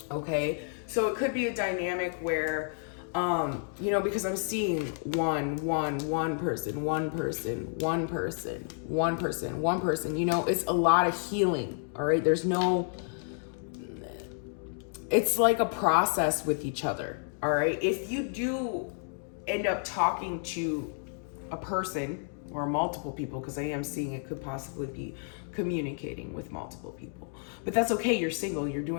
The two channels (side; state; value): right; silent; 57 dB below the other